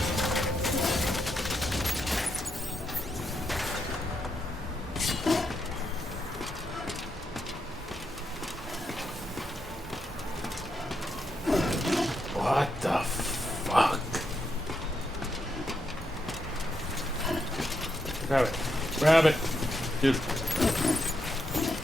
What the fuck? Grab it. Grab it. Dude.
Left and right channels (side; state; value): both; normal; correlation 0.81